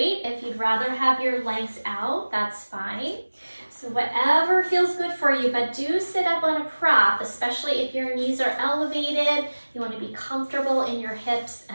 If you'd rather have your legs out, that's fine. So whatever feels good for you, but do sit up on a prop, especially if your knees are elevated. You want to be comfortable in your hips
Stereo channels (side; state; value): both; inverted; correlation -1.00